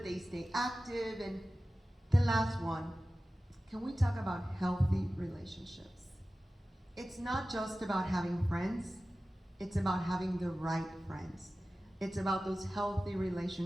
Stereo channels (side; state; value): both; normal; correlation 0.96